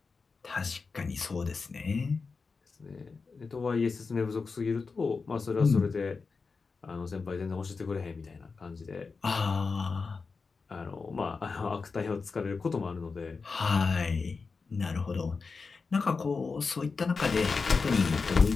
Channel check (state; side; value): quieter; right; 4.6 dB